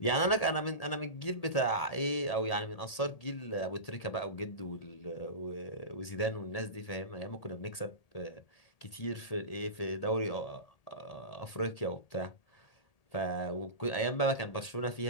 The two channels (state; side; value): late; right; 1.8 ms